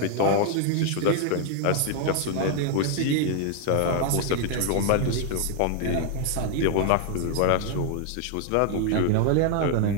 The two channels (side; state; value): both; different; correlation 0.00